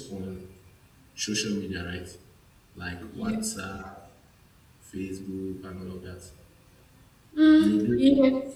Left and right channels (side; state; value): both; identical; correlation 1.00